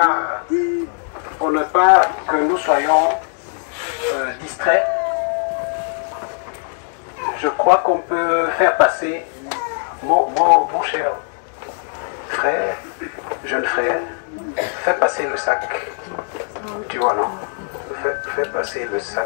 pas que nous soyons distraits, je crois qu'on peut faire passer mon cher frère, jeune frère, fais passer le sac. Tu vois, non? Fais passer le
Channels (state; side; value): silent; right; 56 dB below the other